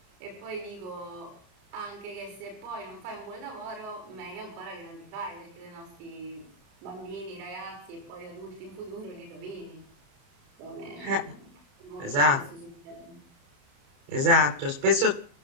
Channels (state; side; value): late; left; 30 ms